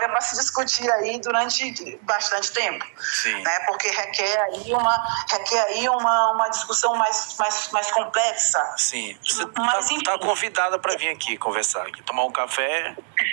para se discutir aí durante bastante tempo. Sim. Né? Porque requer aí uma discussão mais complexa. Sim. Você está convidada para vir aqui conversar, aqui, tomar um café.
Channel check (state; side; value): silent; left; 63 dB below the other